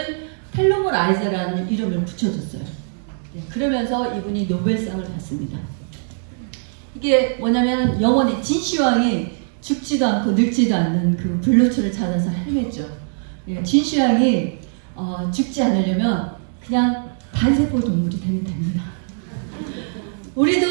텔로메라이즈라는 이름을 붙여줬어요. 그러면서 이분이 노벨상을 받습니다. 이게 뭐냐면 영원히 진시황이 죽지도 않고 늙지도 않는 그 블루초를 찾아서 헤맸죠. 진시황이 죽지 않으려면 그냥 단세포 동물이 되면 됩니다.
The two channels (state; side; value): silent; left; digital silence